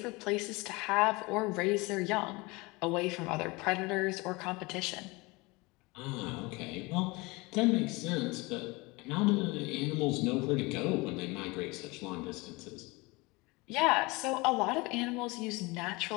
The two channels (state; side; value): quieter; right; 24.6 dB